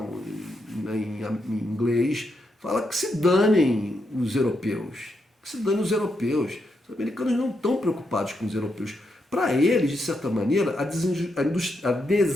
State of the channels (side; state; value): both; normal; correlation 0.82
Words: em inglês, fala que se danem os europeus, que se danem os europeus. Os americanos não estão preocupados com os europeus. Para eles, de certa maneira, a